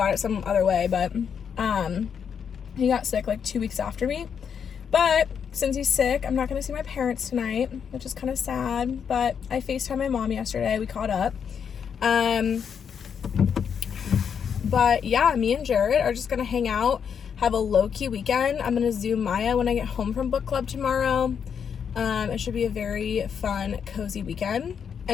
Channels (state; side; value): quieter; right; 7.3 dB